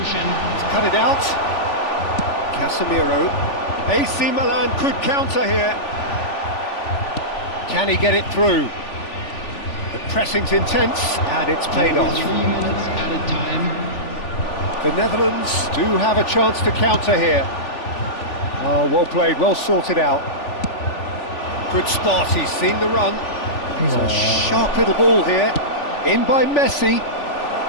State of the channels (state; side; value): late; right; 3.4 ms